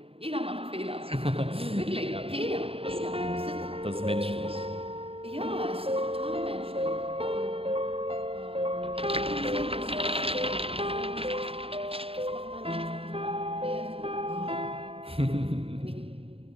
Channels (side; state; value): left; late; 0.27 ms